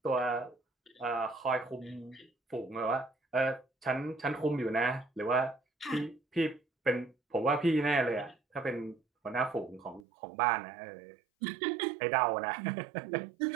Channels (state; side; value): drops out; left; at 10.1 s